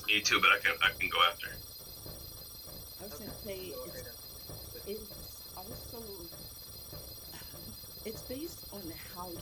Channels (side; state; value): both; identical; correlation 1.00